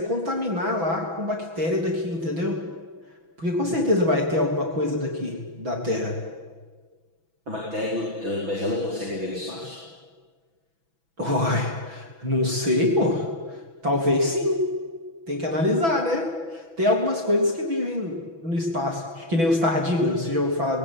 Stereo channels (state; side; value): late; left; 6.1 ms